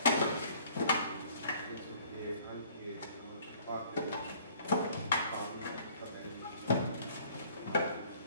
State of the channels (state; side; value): inverted; both; correlation -0.55